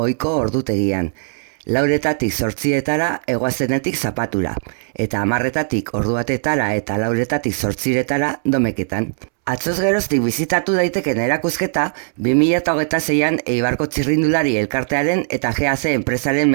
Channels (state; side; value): silent; left; 66 dB below the other